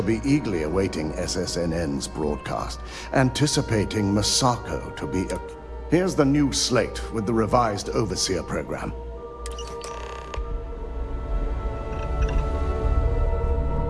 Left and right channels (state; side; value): identical; both; correlation 1.00